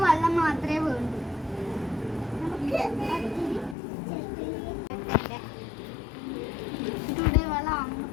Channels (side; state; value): right; drops out; at 3.8 s